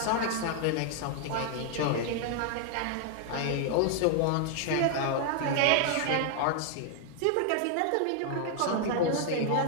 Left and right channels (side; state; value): both; different; correlation 0.00